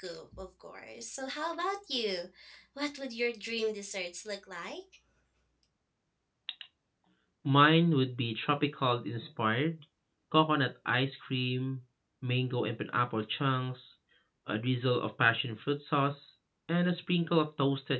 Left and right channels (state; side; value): identical; both; correlation 1.00